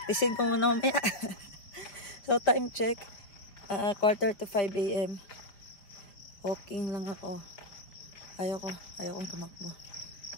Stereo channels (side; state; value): right; late; 5.2 ms